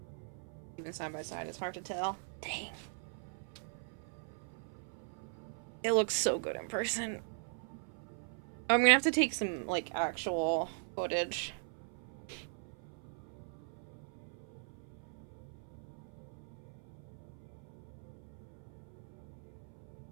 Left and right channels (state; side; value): silent; left; 51 dB below the other